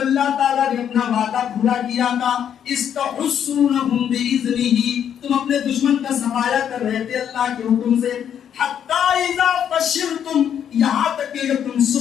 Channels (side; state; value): right; quieter; 9.0 dB